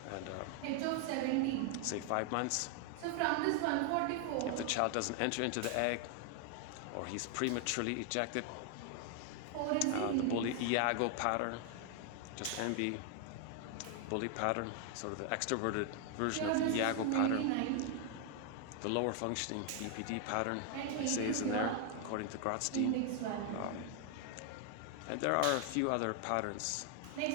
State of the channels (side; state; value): both; different; correlation 0.00